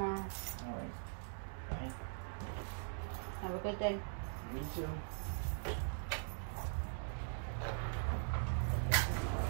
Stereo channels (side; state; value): left; silent; digital silence